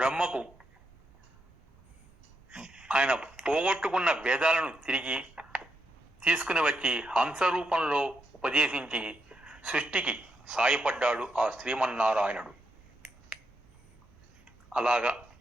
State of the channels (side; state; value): both; normal; correlation 0.82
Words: ఆయన పోగొట్టుకున్న వేదాలను తిరిగి తీసుకుని వచ్చి హంస రూపంలో ఉపదేశించి సృష్టికి సాయపడ్డాడు ఆ శ్రీమన్నారాయణుడు. అలాగా